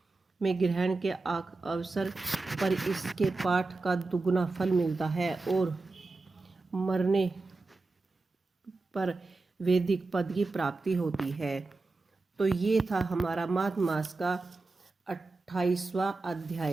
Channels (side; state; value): left; quieter; 3.5 dB